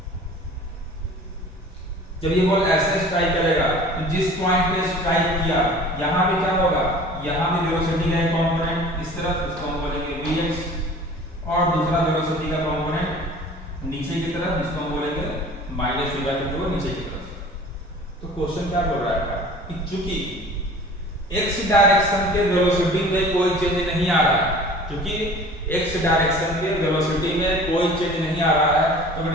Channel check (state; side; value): normal; both; correlation 0.44